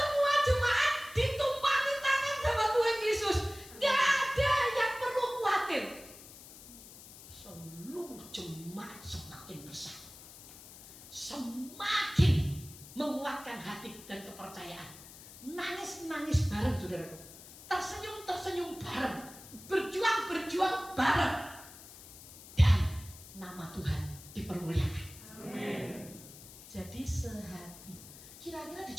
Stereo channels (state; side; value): noise; left; hiss, 17 dB below the sound